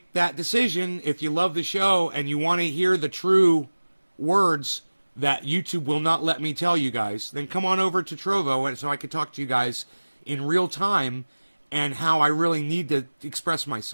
that decision if you love the show and you want to hear the true words that YouTube will not let me tell you guys. Then come on over to Trovo so I can talk to you guys in real time and how I really need to express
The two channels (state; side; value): inverted; both; correlation -1.00